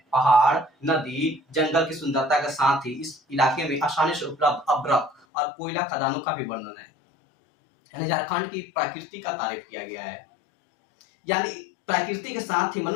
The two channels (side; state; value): right; drops out; at 5.2 s